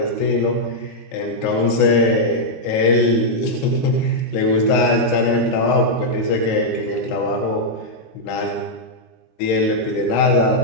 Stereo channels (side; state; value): right; late; 22 ms